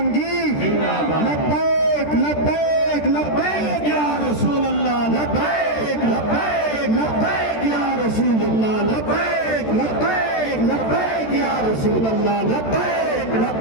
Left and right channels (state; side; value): late; right; 13 ms